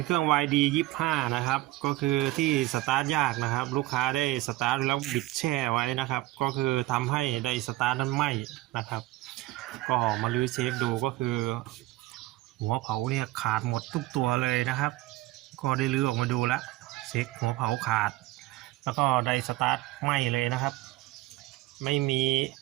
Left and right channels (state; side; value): quieter; left; 18.0 dB